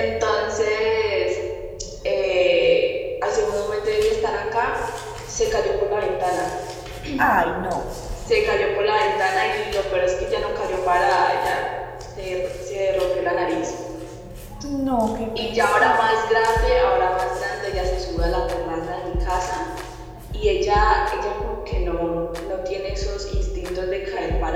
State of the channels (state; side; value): identical; both; correlation 1.00